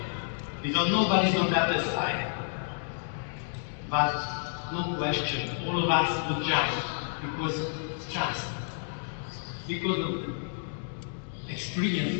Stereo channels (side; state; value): right; silent; digital silence